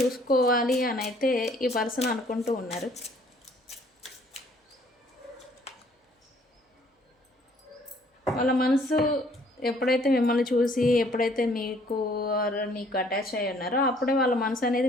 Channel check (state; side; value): normal; both; correlation 0.60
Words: అని అయితే ఈ పర్సన్ అనుకుంటూ ఉన్నారు. వాళ్ళ మనసు ఎప్పుడైతే మిమ్మల్ని చూసి ఎప్పుడైతే నీకు అటాచ్ అయ్యి ఉన్నారో అప్పుడే వాళ్ళ మనసు అనేది